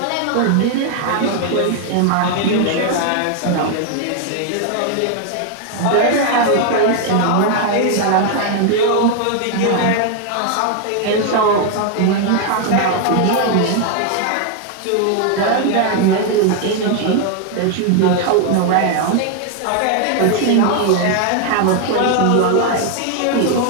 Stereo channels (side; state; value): both; different; correlation 0.00